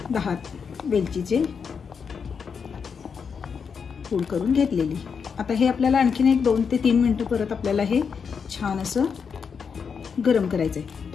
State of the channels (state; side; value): quieter; right; 6.2 dB